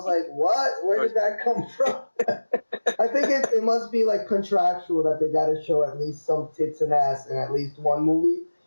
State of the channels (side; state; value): both; inverted; correlation -1.00